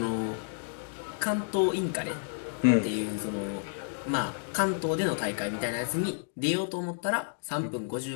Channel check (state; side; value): silent; right; digital silence